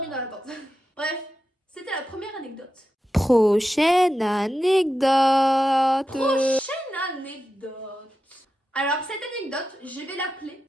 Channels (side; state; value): both; normal; correlation 0.90